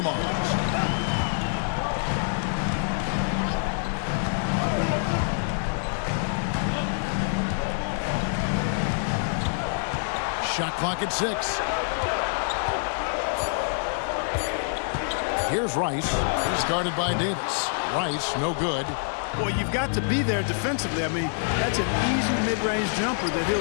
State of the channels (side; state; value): right; silent; 61 dB below the other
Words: Shot clock at 6. Here's Rice. He's guarded by Davis. Rice, no good. Boy, you've got to be there defensively. I mean, that's an easy mid-range jumper that